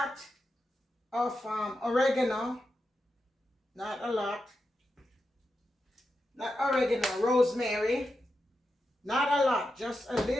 of oregano, not a lot, not oregano, rosemary, not a lot, just a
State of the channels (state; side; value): normal; both; correlation 0.88